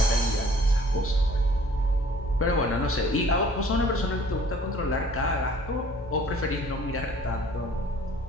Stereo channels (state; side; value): normal; both; correlation 0.54